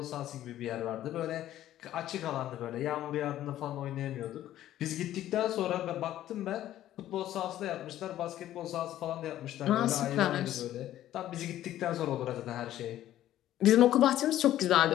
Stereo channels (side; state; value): right; quieter; 13.0 dB